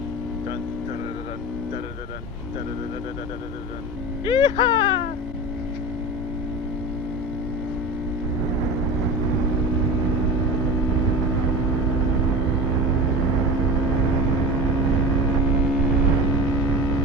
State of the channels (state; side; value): normal; both; correlation 0.31